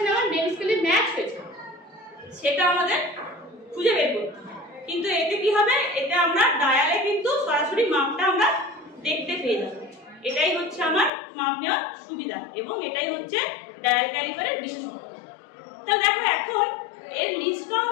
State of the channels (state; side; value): drops out; right; at 11.1 s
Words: আমার মেন স্কেলে ম্যাচ হয়েছে সেটা আমাদের খুঁজে বের করতে হয়। কিন্তু এতে কি হবে, এতে আমরা ডায়ালে কিন্তু সরাসরি মাপটা আমরা দেখতে পেয়ে যাব। এটাই হচ্ছে আমার মাপ নেওয়ার সুবিধা এবং এটাই হচ্ছে ডায়াল ক্যালিপারের বিশেষত্ব। তাহলে দেখো এখন এর লিস্ট